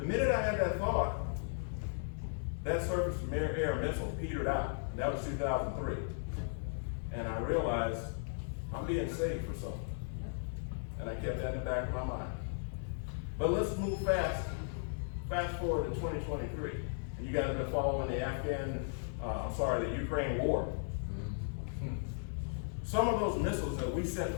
minute I had that thought, that surface-to-air missile petered out. And that was 2003. And I realized I'm being saved for something. And I kept that in the back of my mind. But let's move fast forward to 2023. And you guys have been following the the Ukraine war. Some of those missiles that we sent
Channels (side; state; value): right; silent; digital silence